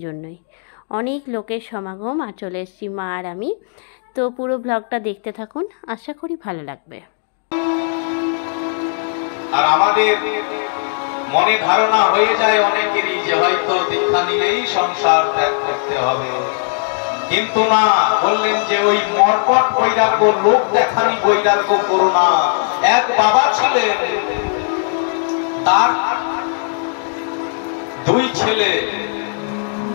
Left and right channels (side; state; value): right; silent; digital silence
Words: জন্যই অনেক লোকের সমাগম। আর চলে এসেছি মা আর আমি। তো পুরো ব্লগটা দেখতে থাকুন, আশা করি ভালো লাগবে। আর আমাদের মনে ধারণা হয়ে যায় অনেকেরই যে হয়তো দীক্ষা নিলেই সংসার ত্যাগ করতে হবে, কিন্তু না, বললেন যে ওই মর্কট বৈরাগ্য, লোক দেখানি বৈরাগ্য করো না। এক বাবা ছিলেন, তার দুই ছেলে।